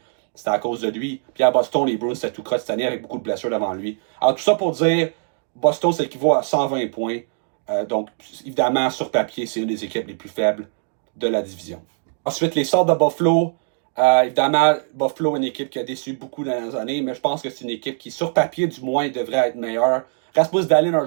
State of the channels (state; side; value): silent; left; digital silence